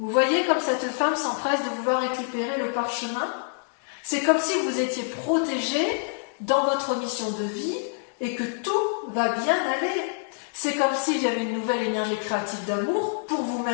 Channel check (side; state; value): right; silent; digital silence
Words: voyez comme cette femme s'empresse de vouloir récupérer le parchemin? C'est comme si vous étiez protégé dans votre mission de vie et que tout va bien aller. C'est comme s'il y avait une nouvelle énergie créative d'amour pour